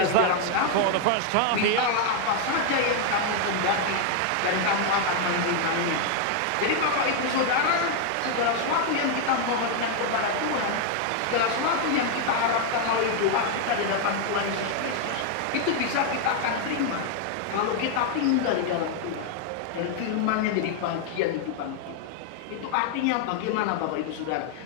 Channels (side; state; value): both; different; correlation 0.00